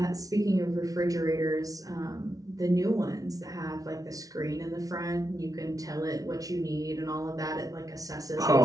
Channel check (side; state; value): left; late; 0.18 ms